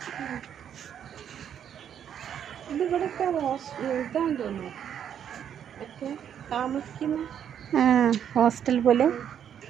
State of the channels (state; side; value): quieter; left; 9.0 dB